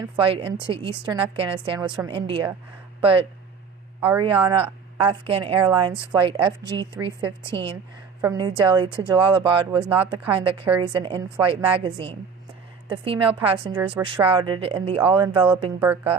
flight into eastern Afghanistan was from India, but Ariana Afghan Airlines flight FG315 from New Delhi to Jalalabad was not the kind that carries an in-flight magazine. The female passengers were shrouded in the all-enveloping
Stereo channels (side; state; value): left; quieter; 5.9 dB